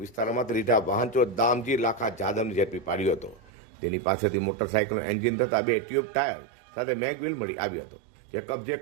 વિસ્તારમાં રીઢા વાહન ચોર દામજી લાખા જાદવને ઝડપી પાડ્યો હતો। તેની પાસેથી મોટરસાઇકલનું એન્જિન તથા 2 ટ્યુબ ટાયર સાથે મેગવ્હીલ મળી આવ્યો હતો, જે કબજે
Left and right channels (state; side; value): drops out; left; at 3.5 s